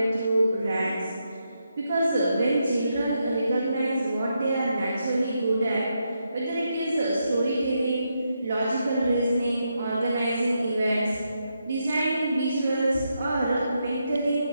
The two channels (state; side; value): inverted; both; correlation -0.83